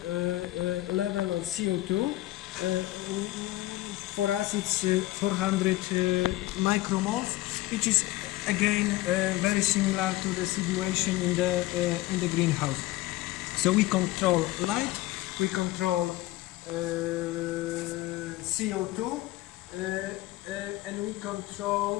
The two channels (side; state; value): right; quieter; 17.3 dB